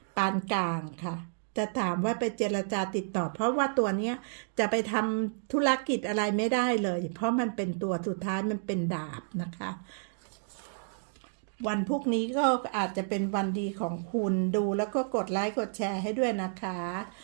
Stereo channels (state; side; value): silent; left; digital silence